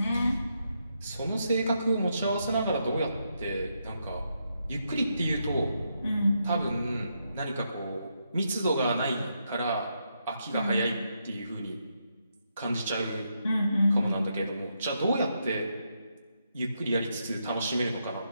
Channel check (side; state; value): both; inverted; correlation -0.81